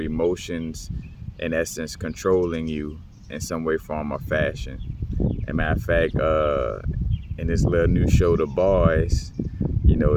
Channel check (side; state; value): both; identical; correlation 1.00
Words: in essence, controlling you in some way, form, or fashion. As a matter of fact, in this little new show, The Boys, you